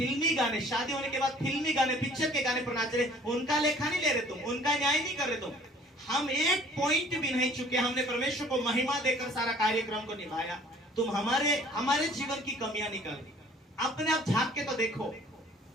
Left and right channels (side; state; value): both; normal; correlation 0.52